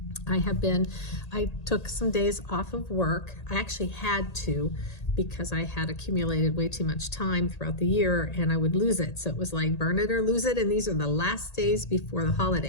I took some days off of work. I actually had to, because I had accumulated way too much time throughout the year and I would lose it. So it was like burn it or lose it. And these are the last days before the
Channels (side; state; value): right; late; 1.8 ms